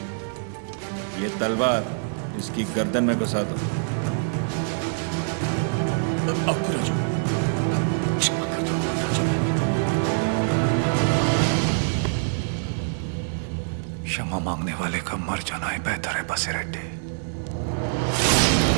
ये तलवार इसकी गर्दन में घुसा दो। राजू, क्षमा कर दो राजू। क्षमा मांगने वाले का मर जाना ही बेहतर है बसिरेड्डी।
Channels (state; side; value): silent; left; 62 dB below the other